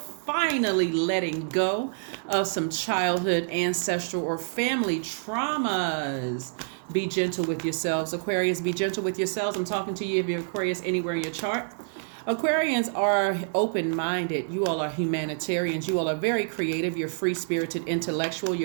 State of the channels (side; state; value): left; silent; digital silence